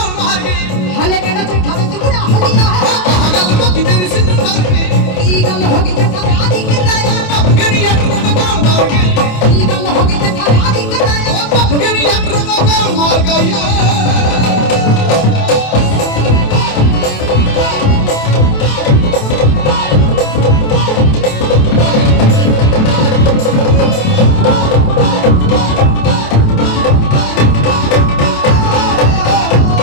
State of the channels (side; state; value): right; late; 27 ms